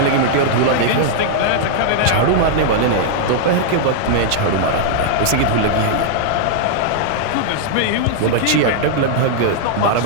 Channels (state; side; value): different; both; correlation -0.01